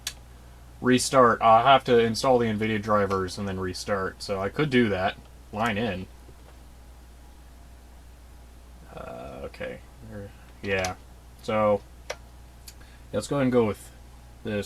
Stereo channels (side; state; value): both; identical; correlation 1.00